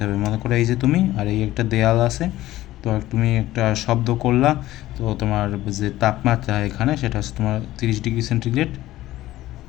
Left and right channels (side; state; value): right; quieter; 15.6 dB